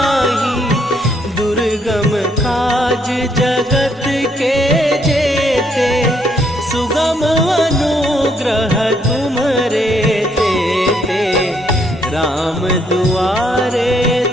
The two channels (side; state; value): both; normal; correlation 0.71